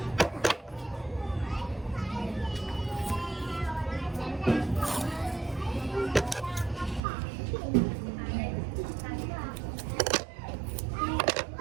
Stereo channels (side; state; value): left; drops out; at 7.0 s